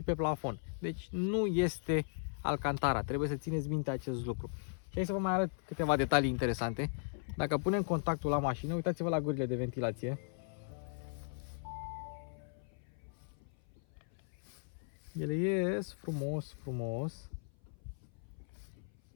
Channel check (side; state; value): right; silent; 53 dB below the other